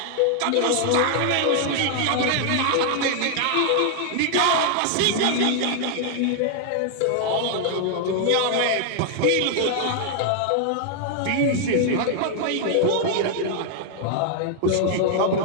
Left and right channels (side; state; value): both; different; correlation 0.00